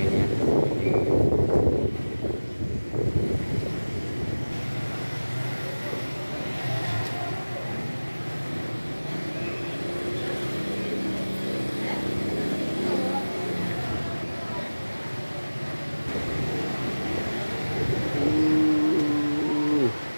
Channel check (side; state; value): both; inverted; correlation -1.00